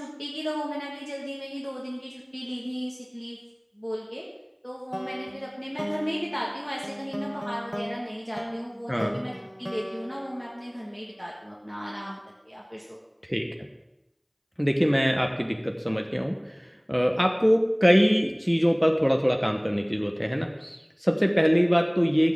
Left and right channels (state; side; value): identical; both; correlation 1.00